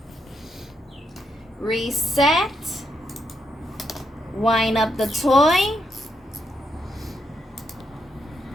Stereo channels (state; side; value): normal; both; correlation 0.80